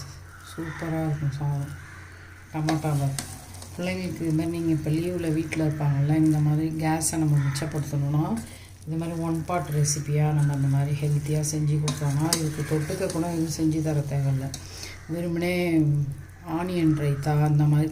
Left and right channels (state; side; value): identical; both; correlation 1.00